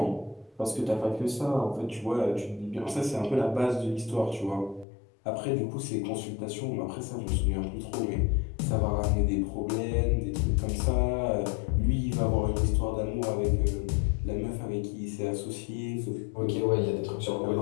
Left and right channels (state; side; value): drops out; right; at 4.9 s